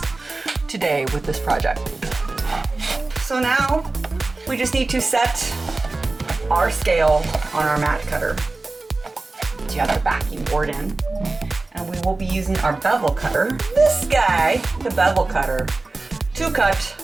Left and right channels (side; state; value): left; quieter; 3.3 dB